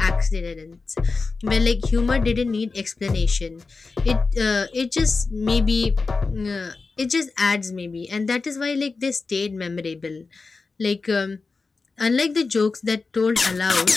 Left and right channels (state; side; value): quieter; right; 4.2 dB